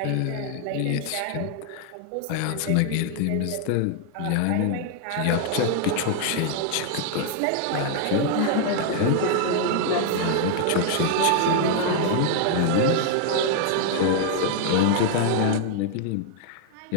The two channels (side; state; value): both; different; correlation 0.00